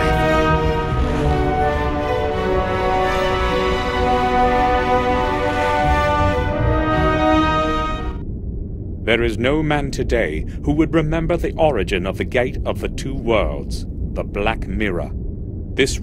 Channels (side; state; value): both; identical; correlation 1.00